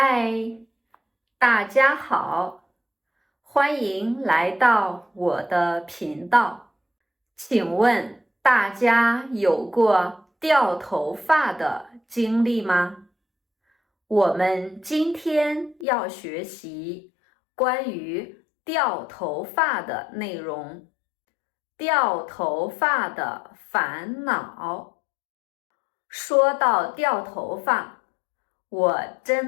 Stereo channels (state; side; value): drops out; right; at 15.9 s